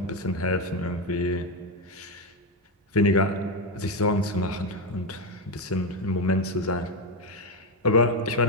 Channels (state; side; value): normal; both; correlation 0.09